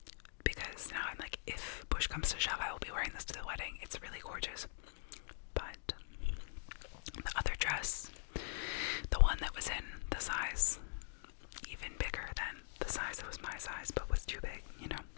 because now I'm like, if push comes to shove, I will be wearing this to the wedding. It's really gorgeous. But the other dress, the one that was in the size even bigger than the size that was my size but was too big, you know.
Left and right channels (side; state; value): right; silent; digital silence